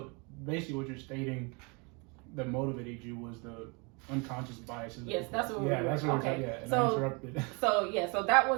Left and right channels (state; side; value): quieter; left; 31.1 dB